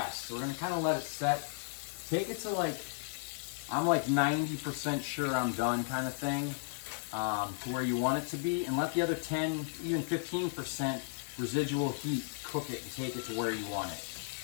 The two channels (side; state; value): right; silent; 55 dB below the other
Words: So we're going to kind of let it set. Take it to like, I'm like 90% sure I'm done kind of thing, to where you want it to be, and let the other 10, even 15% residual heat cook it and take it to where you want it.